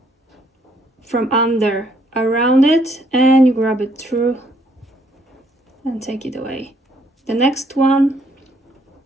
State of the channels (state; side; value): normal; both; correlation 0.68